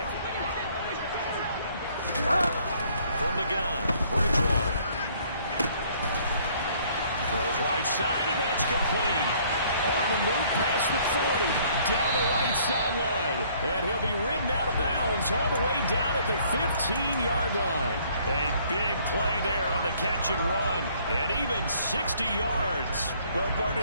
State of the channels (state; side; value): inverted; both; correlation -0.61